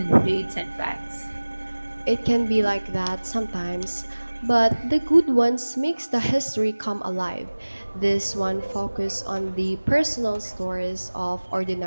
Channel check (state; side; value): inverted; both; correlation -1.00